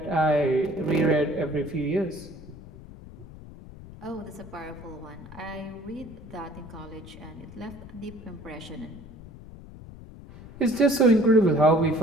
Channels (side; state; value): left; noise; rumble, 16 dB below the sound